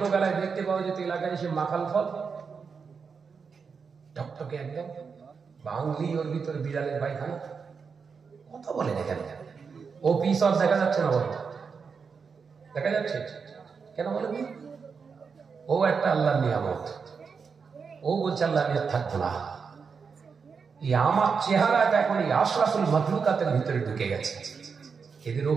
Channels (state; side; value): quieter; left; 5.6 dB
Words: দেখতে পাওয়া যেত এলাকায় এসে মাকাল ফল, টকটকে একদম বাংলি, ওর ভিতরে বিড়ালের পায়খানা। কথা বলে দেখেন, ও পিস আর দেখা যাচ্ছে না। বলো দেখা যাচ্ছে কেন? বলেন, ও একটা আল্লাহর নিয়ামত। ও বলছে আল্লাহ আমি আর থাকবো না। এই আমার চেহারাটা এখন এই আশরাফুল মাখলুকাতের ভিতরে ঢুকে গেছে। এদের